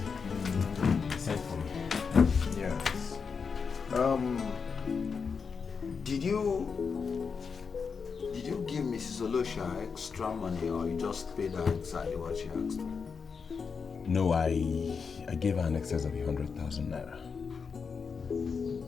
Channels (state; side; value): quieter; right; 5.6 dB